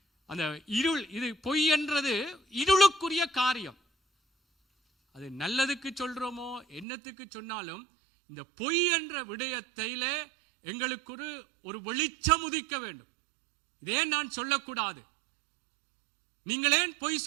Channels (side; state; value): left; drops out; at 6.9 s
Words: அந்த இருள், இது பொய் என்றது இருளுக்குரிய காரியம். அது நல்லதுக்கு சொல்றோமோ என்னத்துக்கு சொன்னாலும் இந்த பொய் என்ற விடயத்திலே எங்களுக்கு ஒரு வெளிச்சம் உதிக்க வேண்டும். இதே நான் சொல்லக்கூடாது, நீங்களேன் பொய்